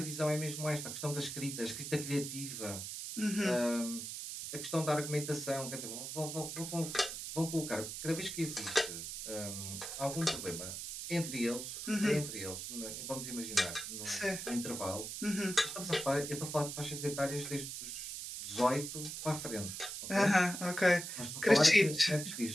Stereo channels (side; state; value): right; noise; hiss, 6 dB below the sound